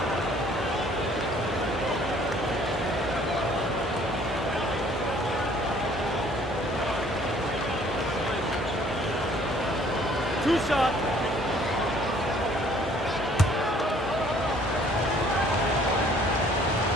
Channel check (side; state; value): both; normal; correlation 0.58